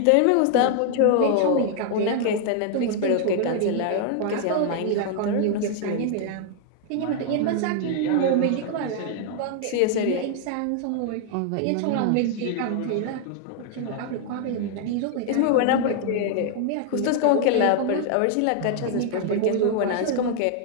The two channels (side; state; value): both; different; correlation 0.00